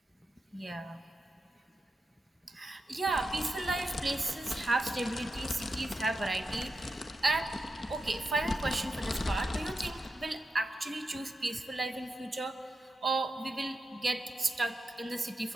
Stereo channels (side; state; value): both; normal; correlation 0.88